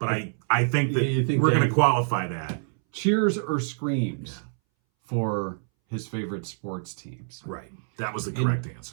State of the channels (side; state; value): left; silent; 61 dB below the other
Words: I think that You think we're they- going to qualify that. Cheers or screams for his favorite sports teams. Right. That was the correct